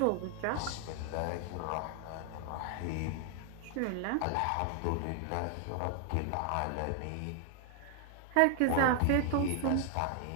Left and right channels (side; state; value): both; different; correlation 0.00